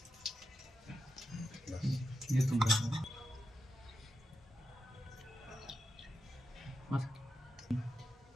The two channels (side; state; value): both; normal; correlation 0.88